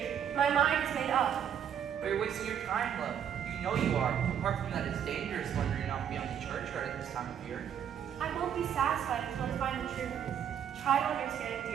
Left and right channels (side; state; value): left; quieter; 8.8 dB